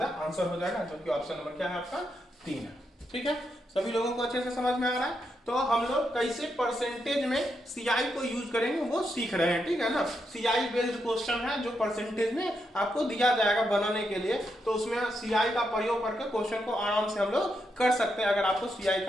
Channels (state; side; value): normal; both; correlation 0.82